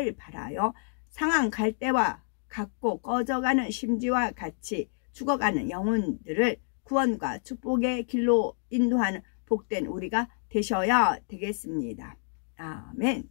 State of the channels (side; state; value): right; silent; 59 dB below the other